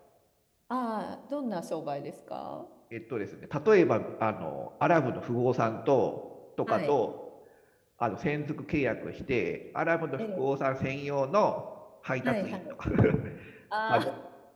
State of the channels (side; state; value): both; identical; correlation 1.00